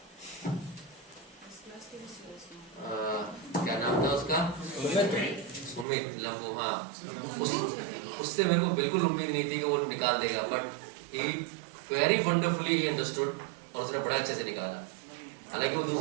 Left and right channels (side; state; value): left; drops out; at 5.9 s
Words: क्या नाम था उसका? सुमित लंबू। हाँ, उससे मेरे को बिल्कुल उम्मीद नहीं थी कि वो निकाल देगा, but he very wonderfully he understood, और उसने बड़ा अच्छे से निकाला। हालांकि वो